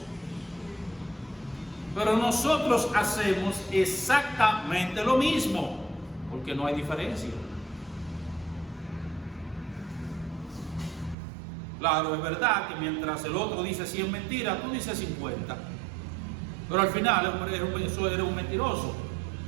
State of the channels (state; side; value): drops out; left; at 11.2 s